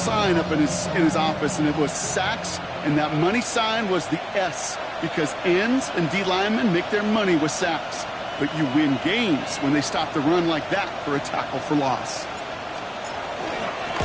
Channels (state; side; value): identical; both; correlation 1.00